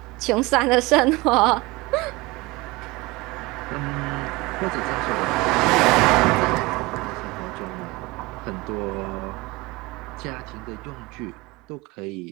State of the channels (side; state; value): left; quieter; 22.5 dB